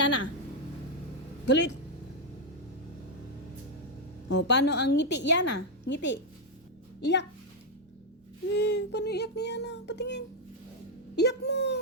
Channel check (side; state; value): both; normal; correlation 0.01